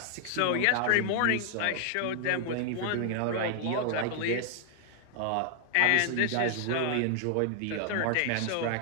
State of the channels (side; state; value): both; different; correlation 0.00